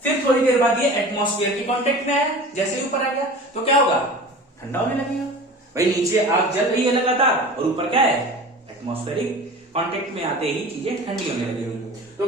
फिर थोड़ी देर बाद ये एटमॉस्फेयर की कांटेक्ट में है, जैसे ही ऊपर आ गया तो क्या होगा? ठंडा होने लगेगा। भाई नीचे आग जल रही है लगातार, और ऊपर क्या है? एटमॉस्फेरिक कांटेक्ट में आते ही चीजें ठंडी होने लगेगी।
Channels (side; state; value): both; normal; correlation 0.38